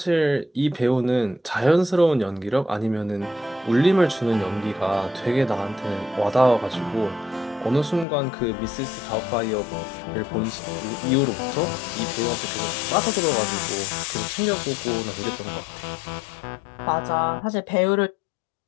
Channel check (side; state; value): right; drops out; at 8.1 s